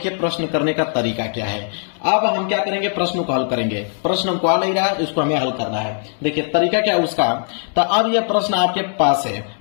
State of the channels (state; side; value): silent; right; digital silence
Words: प्रश्न करने का तरीका क्या है। अब हम क्या करेंगे, प्रश्न को हल करेंगे। प्रश्न हमको आ नहीं रहा है, इसको हमें हल करना है। देखिए तरीका क्या है उसका। तो अब यह प्रश्न आपके पास है।